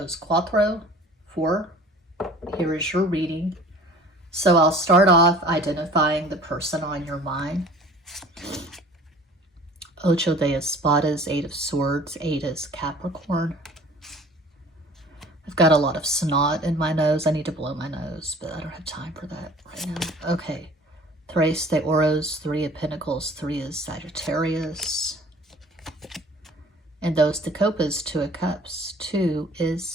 Cuatro, 4, here is your reading. So I'll start off identifying the person on your mind. Ocho de Espadas, 8 of Swords, 8 is Capricorn. I've got a lot of snot in my nose. I need to blow my nose, but I don't have time for that right now. Okay. Tres de Oros, 3 of Pentacles, 3 is Sagittarius. And those de Copas, 2 of Cups, 2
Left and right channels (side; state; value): both; normal; correlation 0.48